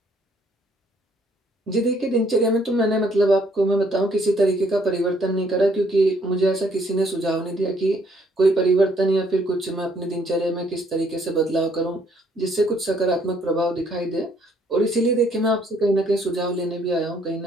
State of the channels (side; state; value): both; normal; correlation 0.66